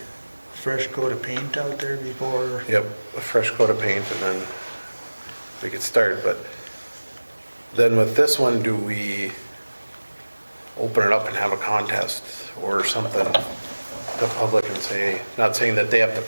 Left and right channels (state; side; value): inverted; both; correlation -1.00